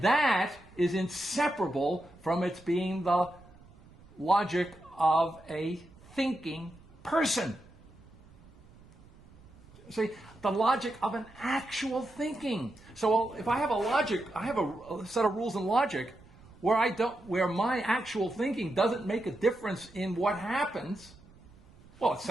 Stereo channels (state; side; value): noise; right; rumble, 24 dB below the sound